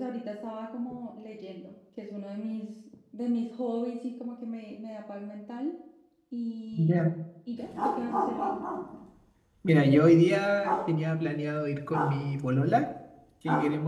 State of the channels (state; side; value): identical; both; correlation 1.00